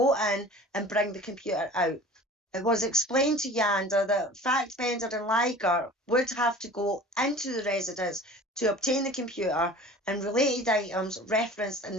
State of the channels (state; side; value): normal; both; correlation 0.42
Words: in and bring the computer out. It was explained to Yanda that Fackbender and Liger would have to go into the residence to obtain the computer and related items referenced in